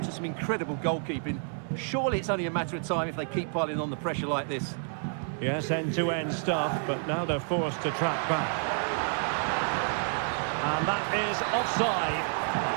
some incredible goalkeeping. Surely it's only a matter of time if they keep piling on the pressure like this. Yes, end-to-end stuff, but now they're forced to track back. And that is offside.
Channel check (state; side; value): silent; left; 58 dB below the other